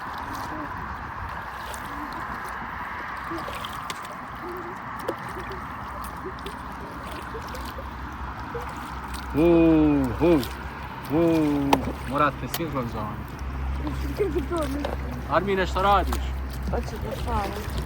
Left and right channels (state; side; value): identical; both; correlation 1.00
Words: Morate sinhronizovati. Armine, što radiš? Hoću da spavam.